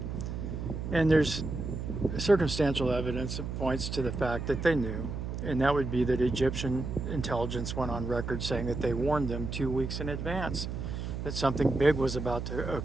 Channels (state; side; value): noise; right; hum, 5 dB below the sound